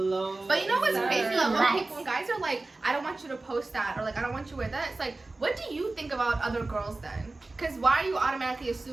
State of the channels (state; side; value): quieter; left; 3.2 dB